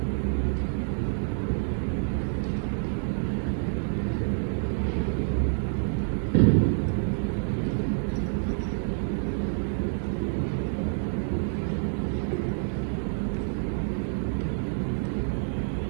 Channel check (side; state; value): left; silent; 59 dB below the other